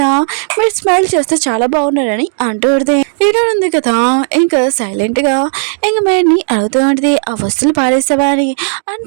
మీరు స్మైల్ చేస్తే చాలా బాగున్నారని అంటూ ఉంటుంది. హీరో ఉంది కదా ఇంకా సైలెంట్గా ఇంకా మేడ్ని అడుగుతూ ఉంటుంది, ఆ వస్తువులు పారేసావా అని.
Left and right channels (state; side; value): silent; left; digital silence